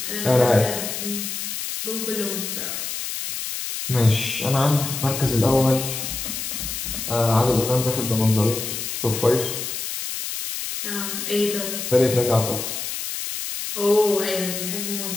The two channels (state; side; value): noise; left; hiss, 5 dB below the sound